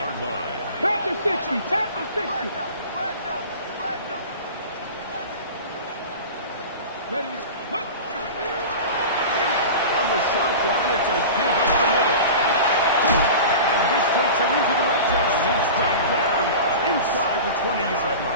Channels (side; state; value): both; inverted; correlation -0.33